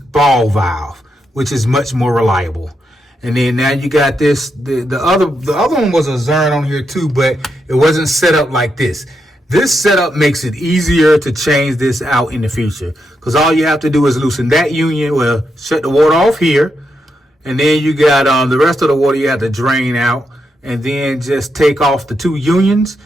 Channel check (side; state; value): both; normal; correlation 0.83